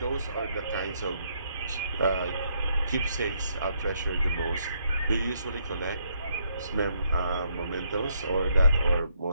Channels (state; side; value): inverted; both; correlation -0.73